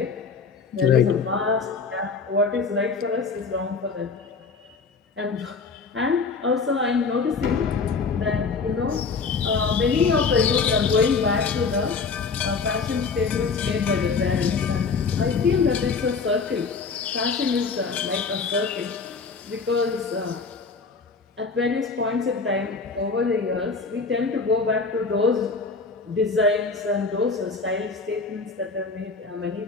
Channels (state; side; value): quieter; right; 4.7 dB